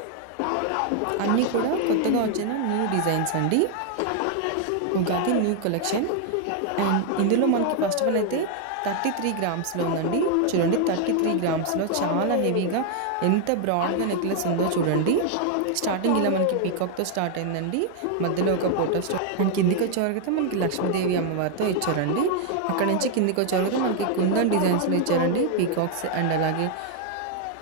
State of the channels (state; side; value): different; both; correlation 0.00